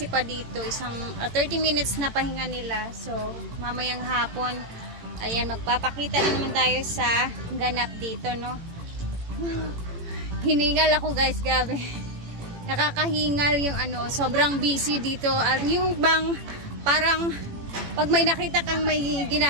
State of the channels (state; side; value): late; left; 18 ms